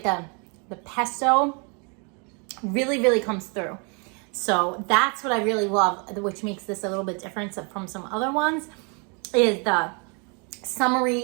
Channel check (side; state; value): left; quieter; 35.2 dB